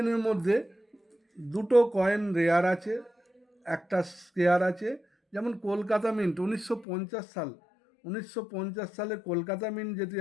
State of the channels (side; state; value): right; drops out; at 6.9 s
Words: মধ্যে দুটো কয়েন রেয়ার আছে, একটা স্কেয়ার আছে। যেমন কলকাতা মিন্ট 1950 সালে কলকাতা মিন্ট যদি